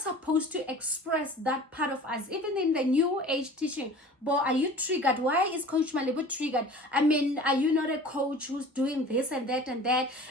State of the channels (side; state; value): both; normal; correlation 0.42